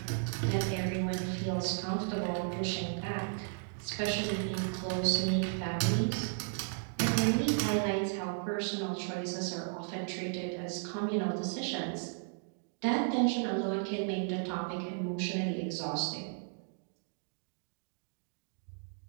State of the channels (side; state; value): left; silent; 55 dB below the other